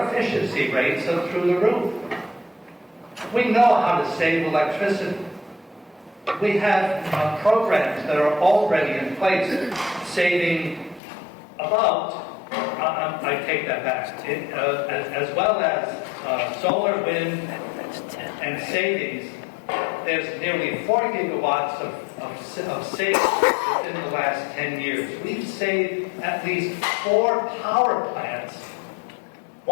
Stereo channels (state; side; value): drops out; right; at 11.0 s